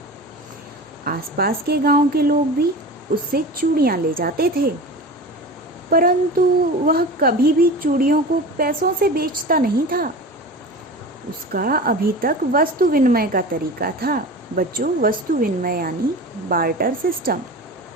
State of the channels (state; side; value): normal; both; correlation 0.32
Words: आसपास के गांव के लोग भी उससे चूड़ियाँ ले जाते थे, परंतु वह कभी भी चूड़ियों को पैसों से बेचता नहीं था। उसका अभी तक वस्तु विनिमय का तरीका था। बच्चों, वस्तु विनिमय यानी बार्टर सिस्टम,